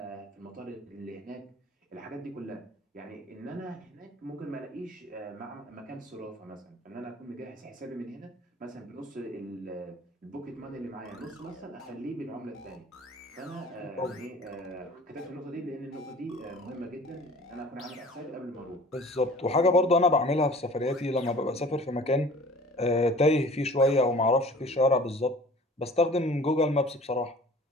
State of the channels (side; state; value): both; normal; correlation 0.47